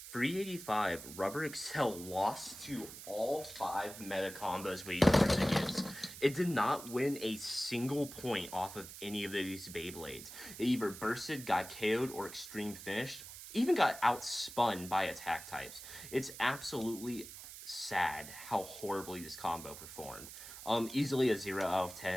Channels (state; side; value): noise; right; hiss, 13 dB below the sound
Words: 385 Rubber Excel lost to all 5 meta combos we used against. It did not win a single point off of any of these Beyblades. It either bursted, got KO'd, or extreme finished. Even got outspun by attack types. It's absolutely sad how horribly this combo performed. Easily a 0 out of